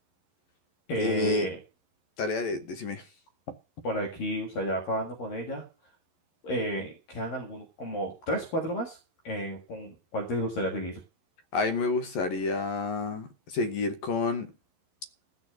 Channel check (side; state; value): right; late; 11 ms